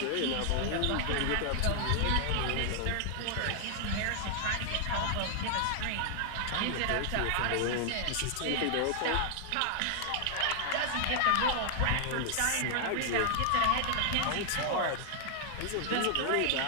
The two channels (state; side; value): different; both; correlation 0.00